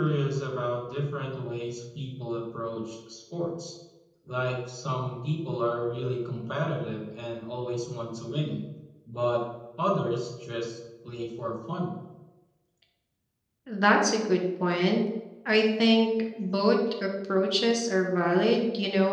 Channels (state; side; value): identical; both; correlation 1.00